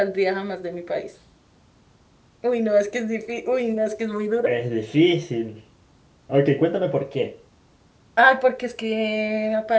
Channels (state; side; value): identical; both; correlation 1.00